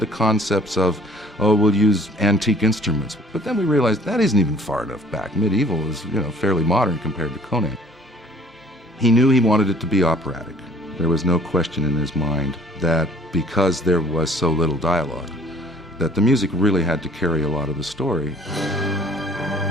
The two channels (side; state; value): both; normal; correlation 0.55